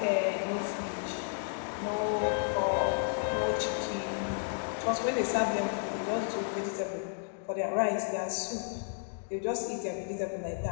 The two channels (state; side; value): silent; right; digital silence